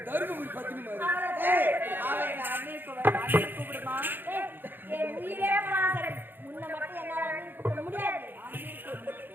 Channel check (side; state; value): left; late; 0.095 ms